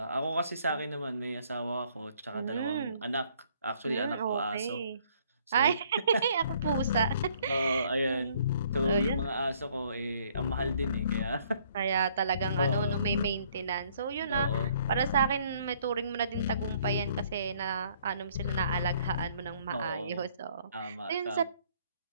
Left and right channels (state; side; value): inverted; both; correlation -0.63